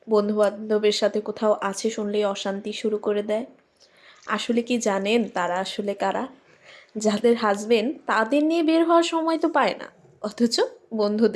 বন্ধু বান্ধবের সাথে কোথাও আছে শুনলেই অশান্তি শুরু করে দেয়। আসলে কি জানেন তারা আসলে কারা? যাদের হাজবেন্ড তাদের নিয়ে বের হওয়ার সময় তো পায় না, অথচ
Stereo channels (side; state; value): both; identical; correlation 1.00